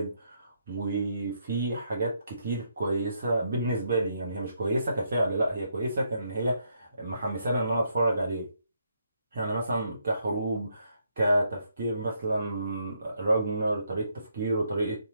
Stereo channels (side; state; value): both; inverted; correlation -0.75